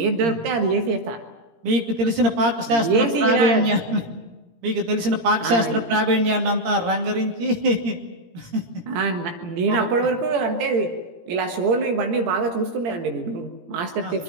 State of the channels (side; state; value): left; late; 17 ms